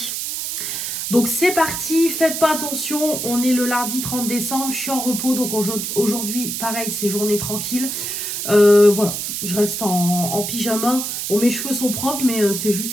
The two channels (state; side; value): noise; right; hiss, 4 dB below the sound